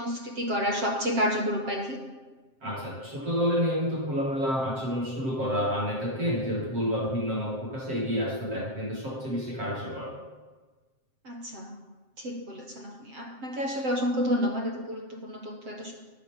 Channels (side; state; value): left; late; 7.6 ms